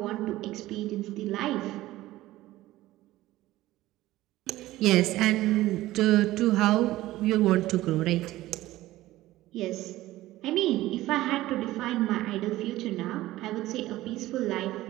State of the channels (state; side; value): quieter; left; 16.4 dB